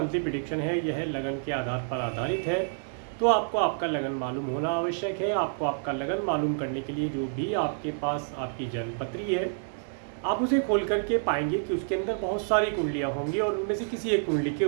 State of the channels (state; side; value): silent; left; digital silence